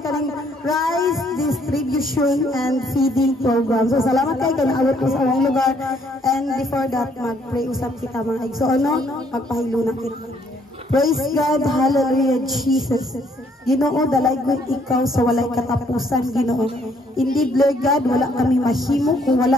rice distribution and feeding program. So salamat kayo kay naabot mas among lugar, and before that mag-pray usap kita mga igsoon, no? Magpahiluna kita. Praise God, hallelujah, Jesus. Ginoo, dalaygon ikaw sa walay katapusan, Ginoo. Indeed, Lord God, wala kami mahimo kung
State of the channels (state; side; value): normal; both; correlation 0.67